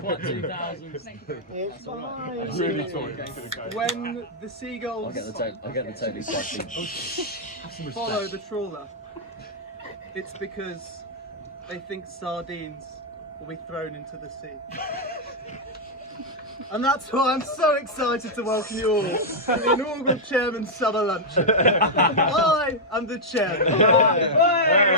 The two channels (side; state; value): both; normal; correlation -0.05